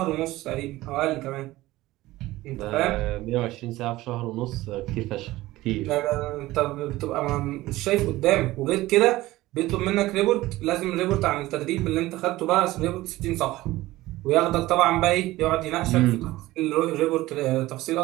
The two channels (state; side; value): quieter; left; 17.6 dB